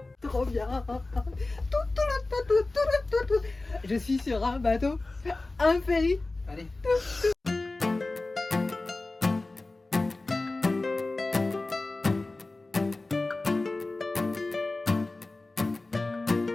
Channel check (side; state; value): right; quieter; 3.2 dB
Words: Trop bien. Je suis sur un bateau, un ferry. Allez.